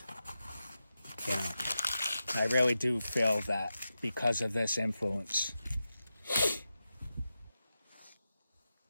I really do feel that because of this influence,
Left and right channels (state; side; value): inverted; both; correlation -0.91